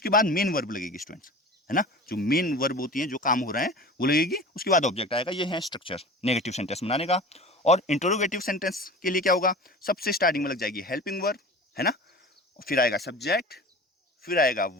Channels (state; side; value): normal; both; correlation 0.37